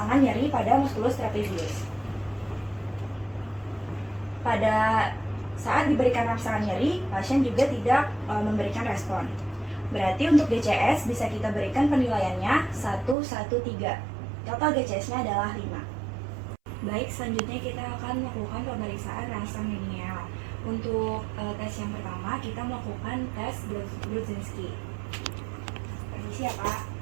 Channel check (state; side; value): drops out; left; at 13.2 s